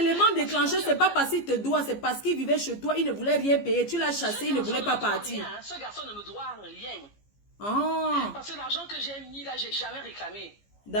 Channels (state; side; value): late; right; 15 ms